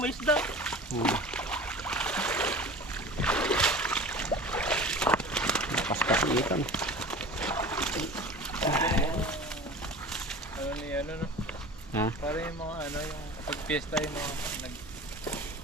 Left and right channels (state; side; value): normal; both; correlation 0.38